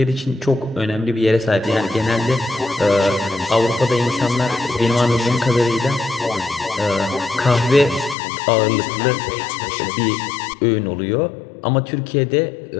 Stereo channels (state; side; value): drops out; right; at 8.2 s